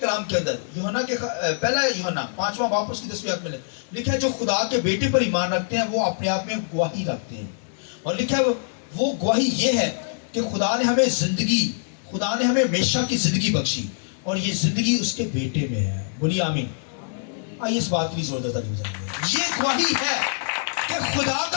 کے اندر؟ یوحنا کے پہلا یوحنا 5واں باب اس کی 10ویں آیت میں لکھا ہے جو خدا کے بیٹے پر ایمان رکھتے ہیں وہ اپنے آپ میں گواہی رکھتے ہیں۔ اور لکھا ہے وہ گواہی یہ ہے کہ خدا نے ہمیں زندگی، خدا نے ہمیں ہمیشہ کی زندگی بخشی، اور یہ زندگی اس کے بیٹے میں ہے. بولیے آمین. آئیے اس بات کی زور دیتا نہیں جائیں گے. یہ گواہی ہے کہ خدا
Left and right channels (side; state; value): right; silent; 62 dB below the other